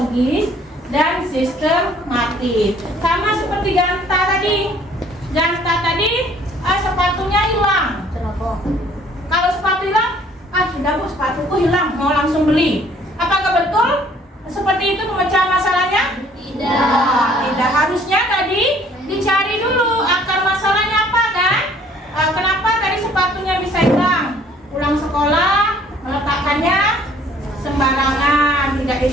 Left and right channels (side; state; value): both; normal; correlation 0.58